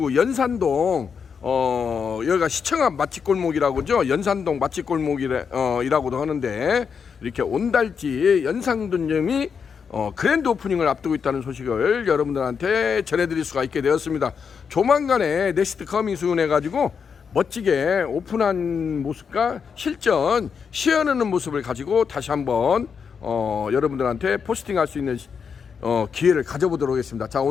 연산동 여기가 시청 앞 맛집골목이라고 하죠. 연산동 맛집골목이라고도 하는데 이렇게 온달집 연상분점이 그랜드 오프닝을 앞두고 있다는 소식을 여러분들한테 전해드릴 수가 있게 되었습니다. 조만간에 넥스트 커밍 순 해가지고 멋지게 오픈한 모습과 실전 시연하는 모습을 가지고 다시 한번 여러분들한테 포스팅할 수 있는 기회를 가져보도록 하겠습니다. 자,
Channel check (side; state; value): right; quieter; 6.3 dB